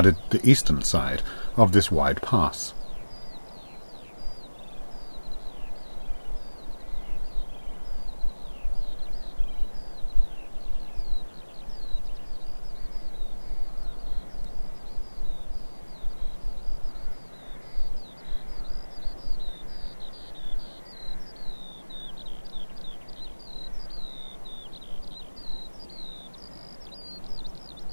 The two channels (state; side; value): inverted; both; correlation -1.00